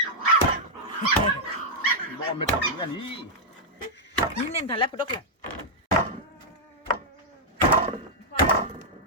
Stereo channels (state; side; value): normal; both; correlation -0.06